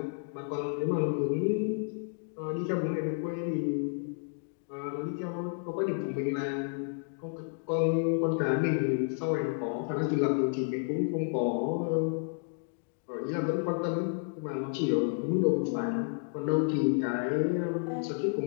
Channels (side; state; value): right; silent; 57 dB below the other